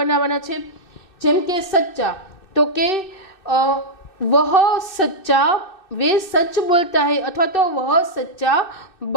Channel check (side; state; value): right; late; 2.6 ms